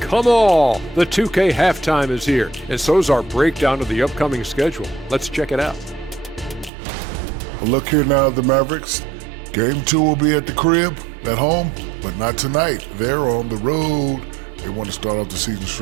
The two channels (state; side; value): drops out; left; at 6.7 s